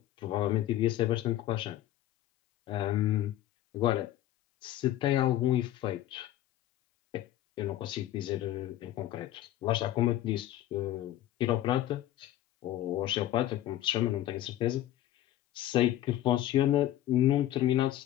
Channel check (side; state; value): right; quieter; 13.4 dB